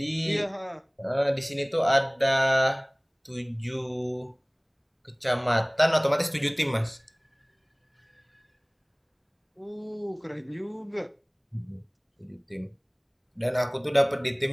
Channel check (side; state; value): both; identical; correlation 1.00